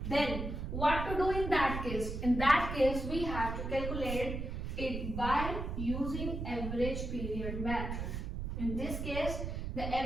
then what to do in that case? In that case, we have to calculate it by using average period method. In this case, the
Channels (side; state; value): right; noise; rumble, 4 dB below the sound